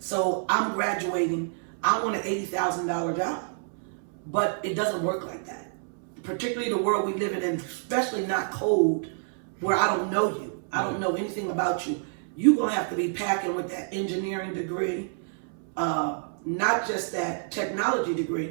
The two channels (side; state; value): left; silent; 59 dB below the other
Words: I'm graduating, I want an $80,000 job, but it doesn't work like that. particularly the world we live in, and especially not code, where I don't know you, I don't know anything about you, you're gonna have to be packing with that engineering degree, not just that technology